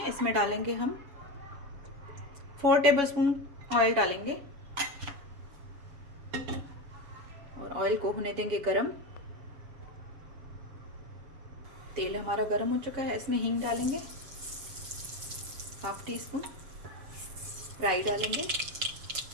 इसमें डालेंगे हम 4 टेबल स्पून ऑयल डालेंगे और ऑयल को होने देंगे गरम। तेल हमारा गरम हो चुका है। इसमें हींग डालेंगे, 1/2 टीस्पून राई डालेंगे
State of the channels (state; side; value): late; left; 7.1 ms